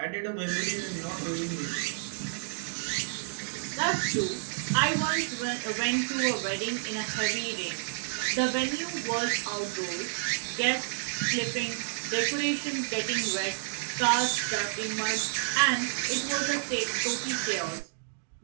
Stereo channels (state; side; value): silent; left; digital silence